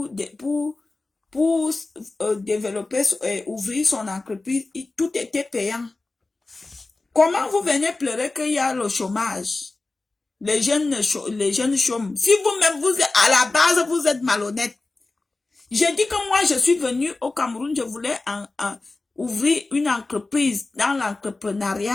développer et ouvrir son entreprise, tout était payant. Comment vous venez pleurer qu'il y a le chômage? Les jeunes chôment. Si vous-même, à la base, vous êtes malhonnête. J'ai dit que moi, je suis venue au Cameroun, je voulais ouvrir une entreprise dans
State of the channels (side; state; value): right; quieter; 3.3 dB